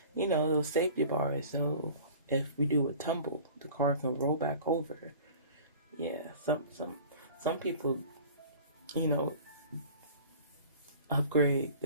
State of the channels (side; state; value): both; inverted; correlation -0.43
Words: safety bars. So if we do a tumble, the car can roll back over. Yeah, some people, upgrade